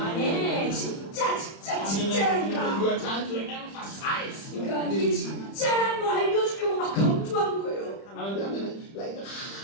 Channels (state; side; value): late; right; 30 ms